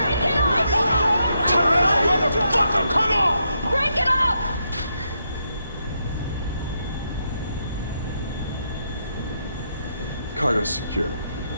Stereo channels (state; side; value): inverted; both; correlation -0.80